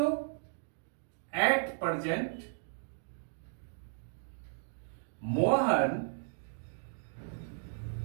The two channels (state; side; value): silent; left; digital silence